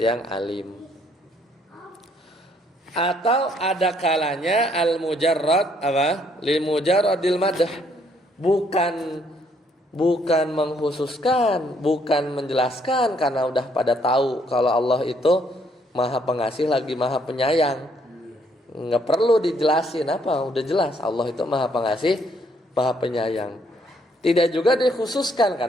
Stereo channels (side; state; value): both; normal; correlation 0.68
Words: yang alim. Atau ada kalanya al-mujarrad apa? Lil mujarradil madah. Bukan mengkhususkan, bukan menjelaskan, karena udah pada tahu kalau Allah itu Maha Pengasih lagi Maha Penyayang. Nggak perlu dijelasin apa, udah jelas Allah itu Maha Pengasih, Maha Penyayang. Tidak juga dikhususkan